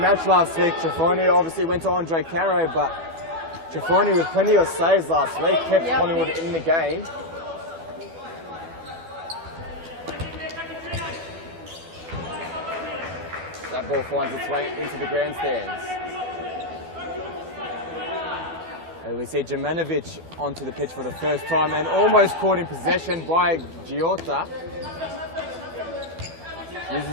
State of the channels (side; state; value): left; late; 12 ms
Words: last week, Ciaffoni, obviously went to Andre Caro, but Ciaffoni with plenty of saves last week kept Collingwood in the game. That ball finds its way into the grandstands. And we see Jemanovic onto the pitch for the first time and almost caught in possession by Giotta. Uses